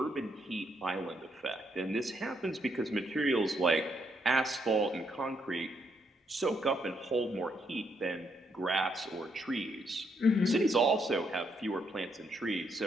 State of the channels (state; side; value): normal; both; correlation 0.76